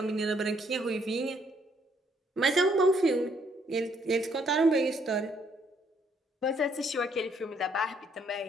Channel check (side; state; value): both; normal; correlation 0.69